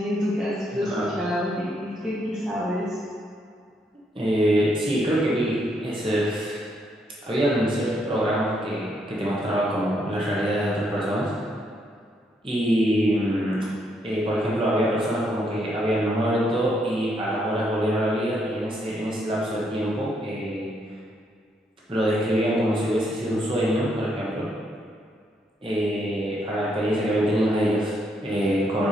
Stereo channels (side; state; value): both; normal; correlation 0.75